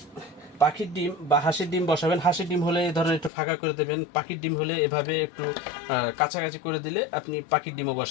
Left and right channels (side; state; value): right; drops out; at 3.3 s